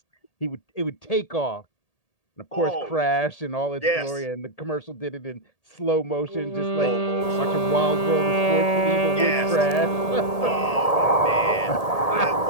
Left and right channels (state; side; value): late; right; 1.8 ms